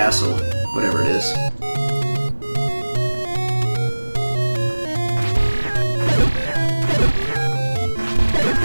whatever it is.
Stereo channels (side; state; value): both; inverted; correlation -1.00